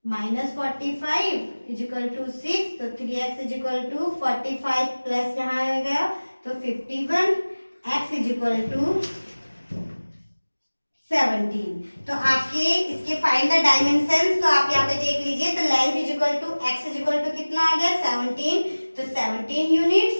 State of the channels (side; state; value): both; inverted; correlation -1.00